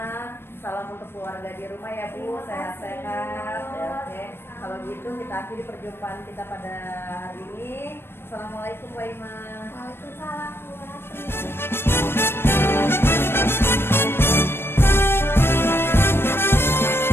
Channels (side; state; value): right; late; 0.11 ms